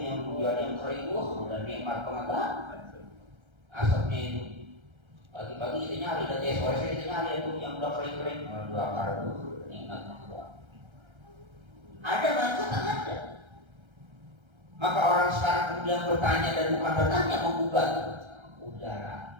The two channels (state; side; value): late; left; 1.3 ms